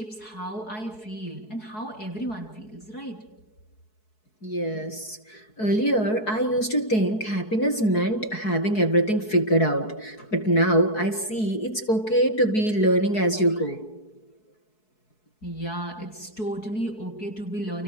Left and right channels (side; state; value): right; late; 4.7 ms